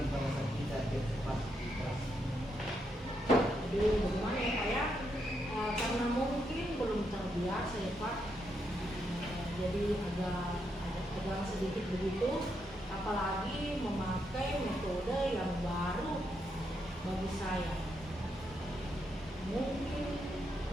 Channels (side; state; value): both; normal; correlation 0.80